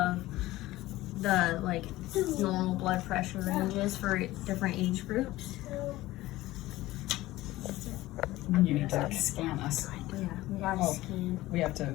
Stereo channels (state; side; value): quieter; right; 17.3 dB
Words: the normal blood pressure ranges for different age groups. You need to scan us. Yeah, we gotta scan. We have to